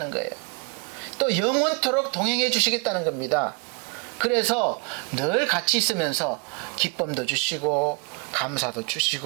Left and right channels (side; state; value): left; quieter; 33.1 dB